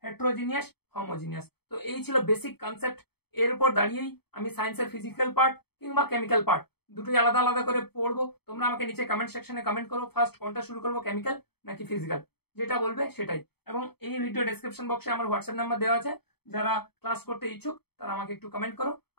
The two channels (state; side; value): late; right; 0.97 ms